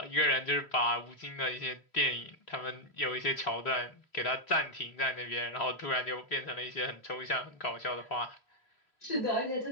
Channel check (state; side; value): late; right; 3.1 ms